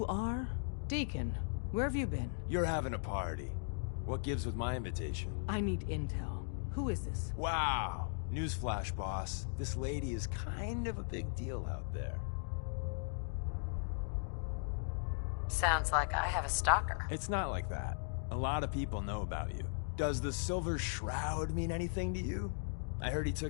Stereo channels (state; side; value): silent; right; digital silence